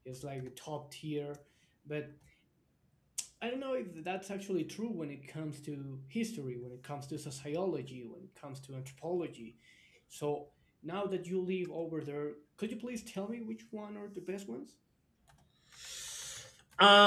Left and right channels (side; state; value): both; identical; correlation 1.00